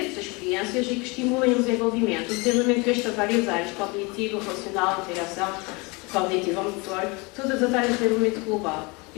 experiências e que estimulem o desenvolvimento. O desenvolvimento este a várias áreas, cognitivo, relacional, interação, cognitivo, motor, todas as áreas de desenvolvimento global.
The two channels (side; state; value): right; quieter; 27.5 dB